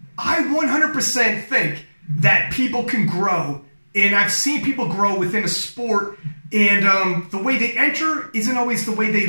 I 100% think that people can grow. And I've seen people grow within a sport, and the way they enter isn't always the way they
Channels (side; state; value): both; inverted; correlation -1.00